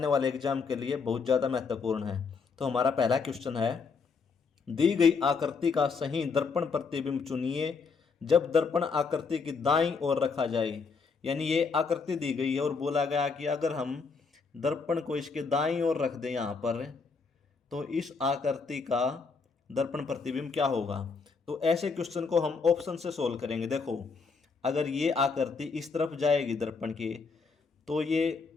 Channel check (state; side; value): quieter; right; 4.9 dB